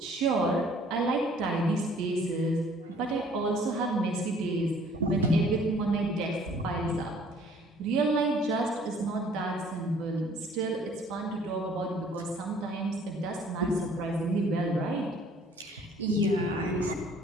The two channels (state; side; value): normal; both; correlation 0.56